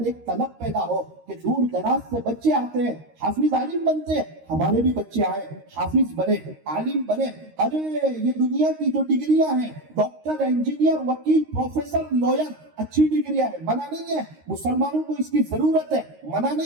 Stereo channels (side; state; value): left; late; 13 ms